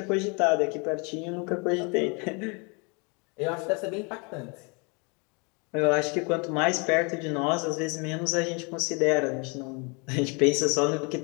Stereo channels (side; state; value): right; quieter; 32.3 dB